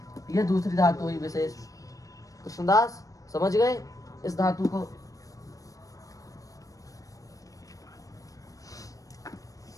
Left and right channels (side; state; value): right; late; 0.16 ms